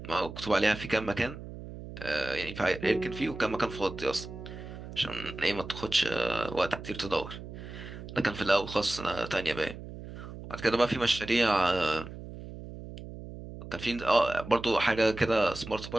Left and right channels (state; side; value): noise; right; hum, 12 dB below the sound